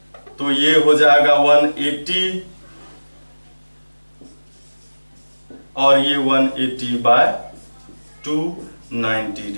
तो ये हो जाएगा 180 और ये 180/2 90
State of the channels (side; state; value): both; inverted; correlation -1.00